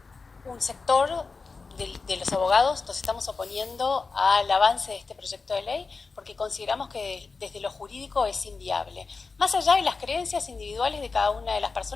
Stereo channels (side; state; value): right; quieter; 4.4 dB